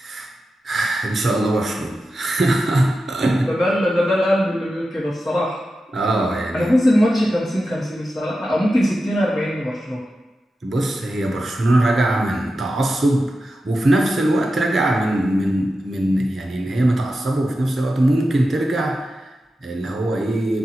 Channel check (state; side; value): normal; both; correlation 0.91